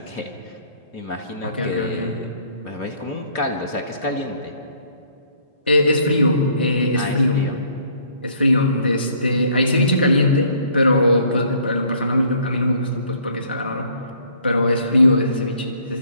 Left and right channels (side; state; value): both; inverted; correlation -0.60